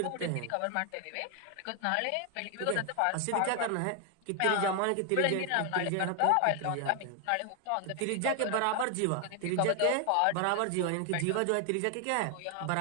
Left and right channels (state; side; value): different; both; correlation 0.00